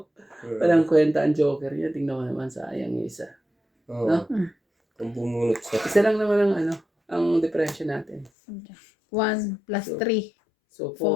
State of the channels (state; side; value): drops out; right; at 8.3 s